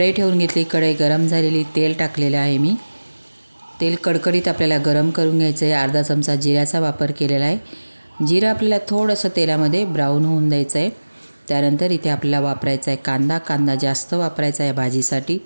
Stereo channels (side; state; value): both; inverted; correlation -1.00